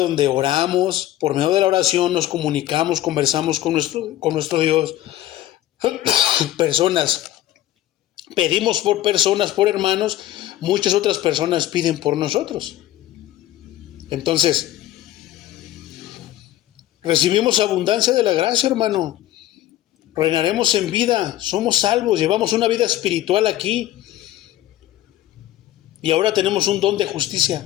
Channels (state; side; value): quieter; right; 14.0 dB